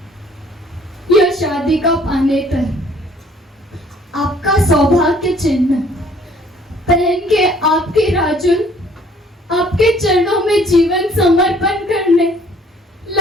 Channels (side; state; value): both; normal; correlation 0.58